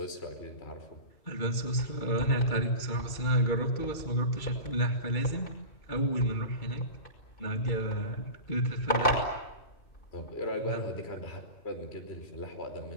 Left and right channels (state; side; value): late; right; 2.3 ms